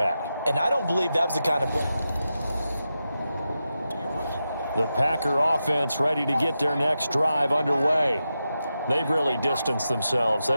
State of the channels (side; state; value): both; inverted; correlation -0.90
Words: And I don't believe that was the kind of play. The Packer offense ready to get their next drive underway. They've really distanced themselves.